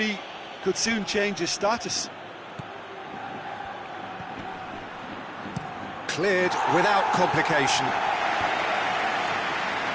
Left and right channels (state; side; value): identical; both; correlation 1.00